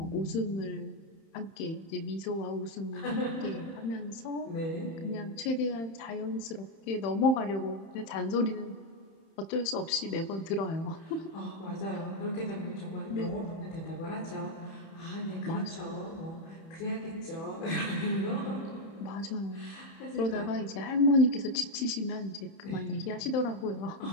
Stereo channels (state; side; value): late; right; 31 ms